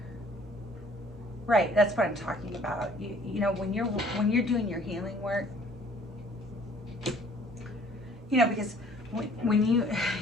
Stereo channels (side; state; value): both; normal; correlation 0.56